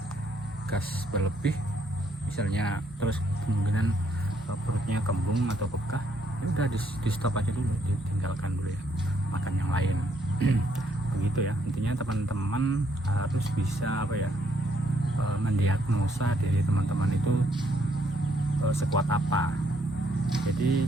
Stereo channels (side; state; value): both; normal; correlation 0.71